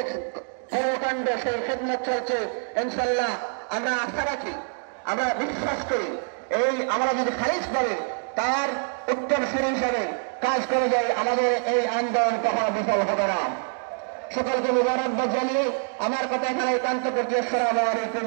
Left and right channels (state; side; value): silent; left; 57 dB below the other